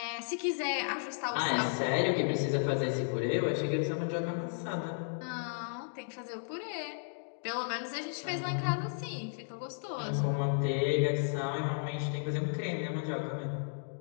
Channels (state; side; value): silent; right; digital silence